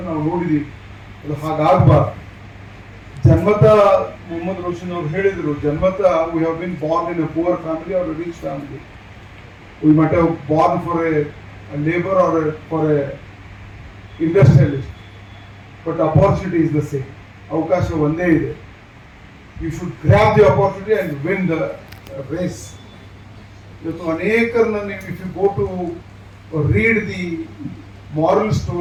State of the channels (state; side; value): identical; both; correlation 1.00